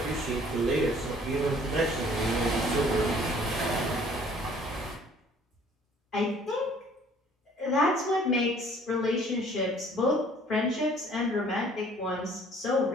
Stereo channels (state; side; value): normal; both; correlation 0.56